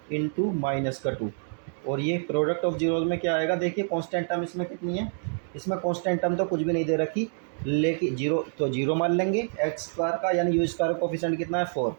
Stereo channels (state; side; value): silent; left; 60 dB below the other